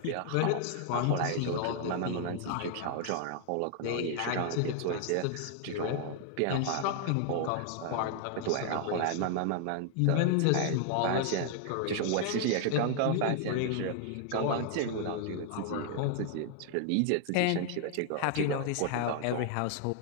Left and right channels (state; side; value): different; both; correlation 0.00